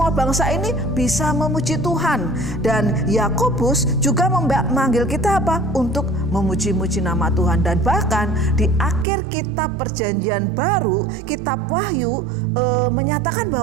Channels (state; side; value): drops out; left; at 9.1 s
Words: bangsa ini bisa memuji Tuhan. Dan Yakobus juga memanggil kita apa? Untuk memuji-muji nama Tuhan. Dan bahkan di akhir kitab Perjanjian Baru, kitab Wahyu, menyatakan